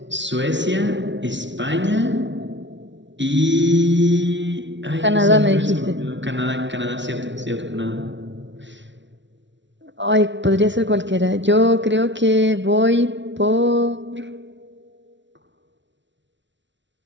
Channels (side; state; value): left; late; 0.53 ms